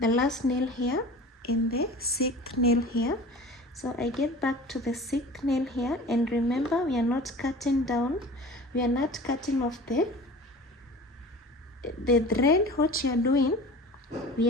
last nail here and the 6th nail here. So I get back to the 6th nail here, and remember, we are not cutting down, we are not cutting off the thread. What you are doing,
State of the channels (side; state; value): both; normal; correlation 0.39